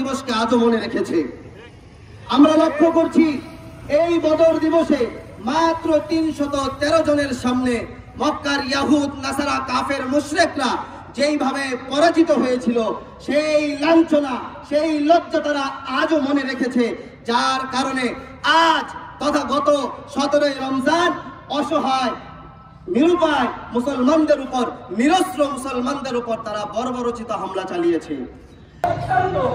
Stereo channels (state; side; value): identical; both; correlation 1.00